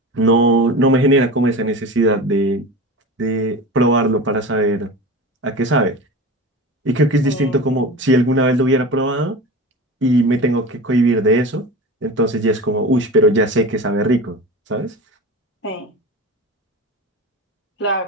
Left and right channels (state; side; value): normal; both; correlation 0.31